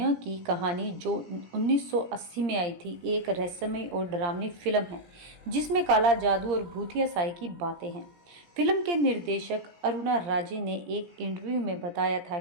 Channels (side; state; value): left; late; 17 ms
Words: की कहानी जो 1980 में आई थी, एक रहस्यमय और डरावनी फिल्म है जिसमें काला जादू और भूतिया साई की बातें हैं। फिल्म के निर्देशक अरुणा राजे ने एक इंटरव्यू में बताया था